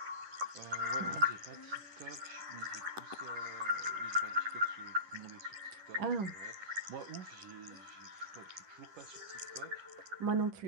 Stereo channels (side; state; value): left; late; 10 ms